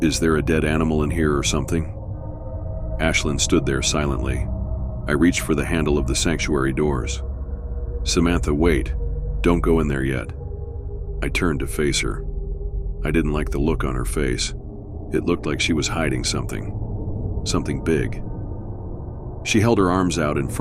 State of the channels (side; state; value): both; identical; correlation 1.00